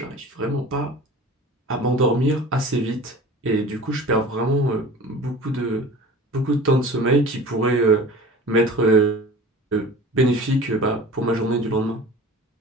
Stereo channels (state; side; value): normal; both; correlation 0.40